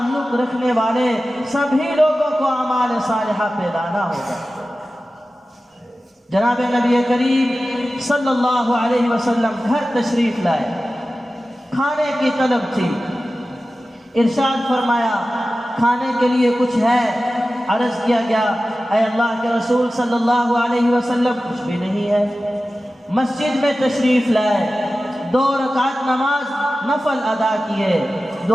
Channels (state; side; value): normal; both; correlation 0.95